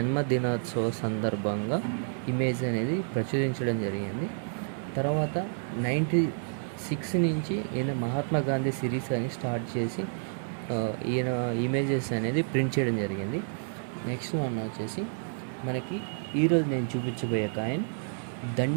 సందర్భంగా ఇమేజ్ అనేది ప్రచురించడం జరిగింది. తర్వాత 96 నుంచి ఈయన మహాత్మా గాంధీ సిరీస్ అని స్టార్ట్ చేసి ఈయన ఇమేజెస్ అనేది ప్రింట్ చేయడం జరిగింది. నెక్స్ట్ వన్ వచ్చేసి మనకి ఈరోజు నేను చూపించబోయే కాయిన్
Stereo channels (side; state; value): left; silent; 58 dB below the other